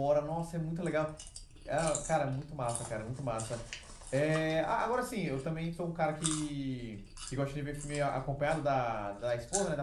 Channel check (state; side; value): identical; both; correlation 1.00